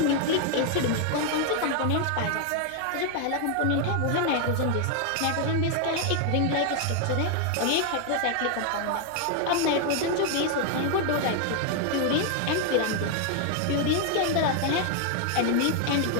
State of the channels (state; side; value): different; both; correlation 0.00